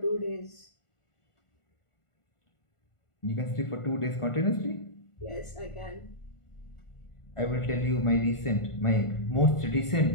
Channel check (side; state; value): right; late; 1.5 ms